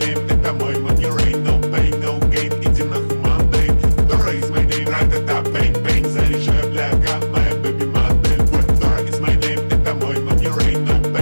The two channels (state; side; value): inverted; both; correlation -1.00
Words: name, это мой money rain. No pain, no gain, иди нахуй Monday. Dora is my name, ра-та-та, bang-bang. Заряжай, бляга, моя baby модель. Dora is my name, это мой money rain. No